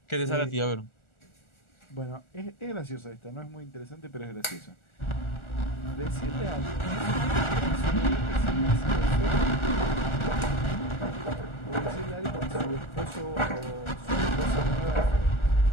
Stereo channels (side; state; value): right; late; 1.4 ms